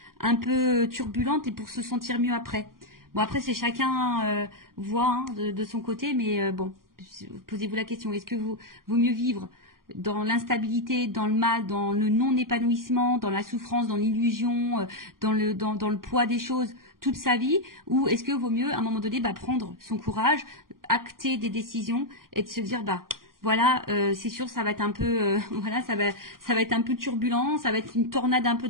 un peu turbulente et pour se sentir mieux après. Bon, après, c'est chacun voit de son côté, mais bon, posez-vous la question, est-ce que vaut mieux vivre dans l'instabilité, dans le mal, dans le non-épanouissement, dans la souffrance, dans l'illusion, dans le poids des choses toute sa vie, ou est-ce que vaut mieux à un moment donné prendre son courage, acter des décisions et de se dire voilà, c'est sûr, ça va être un peu, voilà, ça va être un peu turbulent, ça va être une tornade un peu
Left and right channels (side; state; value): left; late; 0.91 ms